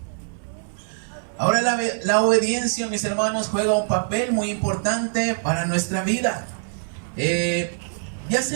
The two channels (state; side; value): silent; left; 62 dB below the other